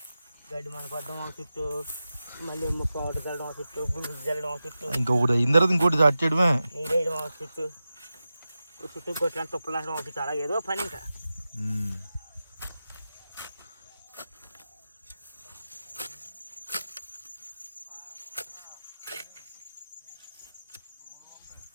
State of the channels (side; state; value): both; inverted; correlation -0.93